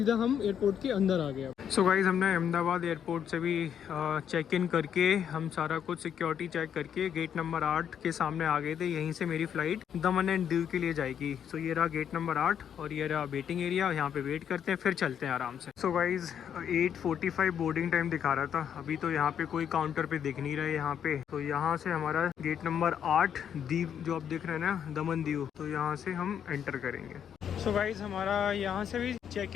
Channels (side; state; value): right; quieter; 8.7 dB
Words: हम एयरपोर्ट के अंदर आ गए। सो गाइज, हमने अहमदाबाद एयरपोर्ट से भी चेक इन करके हम सारा कुछ सिक्योरिटी चेक करके गेट नंबर 8 के सामने आ गए थे। यहीं से मेरी फ़्लाइट दमन एंड दीव के लिए जाएगी। सो ये रहा गेट नंबर 8 और ये रहा वेटिंग एरिया। यहाँ पे वेट करते हैं, फिर चलते हैं आराम से। सो गाइज, 8:45 बोर्डिंग टाइम दिखा रहा था। अभी तो यहाँ पे कोई काउंटर पे दिख नहीं रहा है यहाँ पे। तो यहाँ से हमारा गेट नंबर 8 दीव जो आप देख रहे हैं ना, दमन दीव, तो यहाँ से हम एंटर करेंगे। सो गाइज, हमारा यहाँ से भी चेक